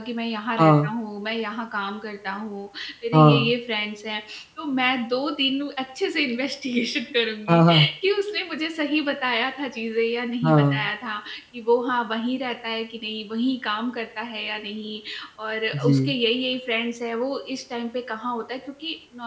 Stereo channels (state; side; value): identical; both; correlation 1.00